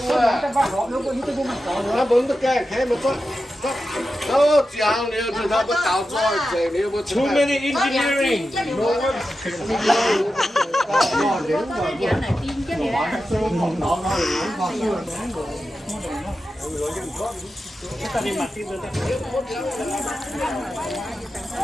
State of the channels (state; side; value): normal; both; correlation 0.91